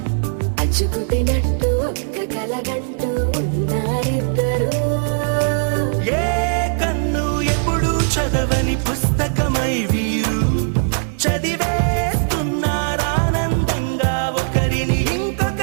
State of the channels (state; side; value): silent; left; digital silence